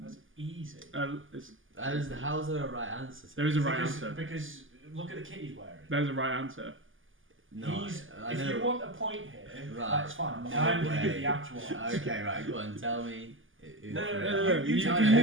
easy. How's there a right answer? There is a right answer. Because look at the kit he's wearing. There's a right answer. No, I if know. you want a point here, Right. that's fine. No I'm going to way. give the actual answer. Okay, right, go on, tell me. No. You Tell can me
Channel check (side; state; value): left; late; 0.58 ms